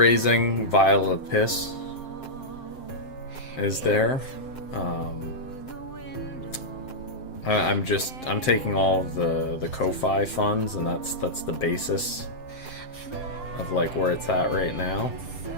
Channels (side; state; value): right; late; 7.7 ms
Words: vial of piss is there. I'm taking all of the Ko-Fi funds, and that's the basis of like where it's at right now.